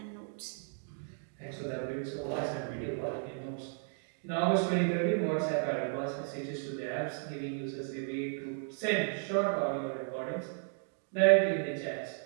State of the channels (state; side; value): silent; left; 55 dB below the other